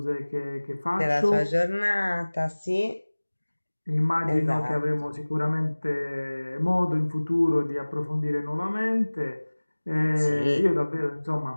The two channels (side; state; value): both; inverted; correlation -1.00